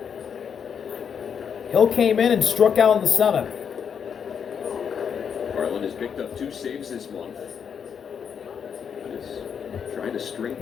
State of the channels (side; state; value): right; quieter; 7.2 dB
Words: Hill came in and struck out in the 7th. Varland has picked up 2 saves this month. Trying to string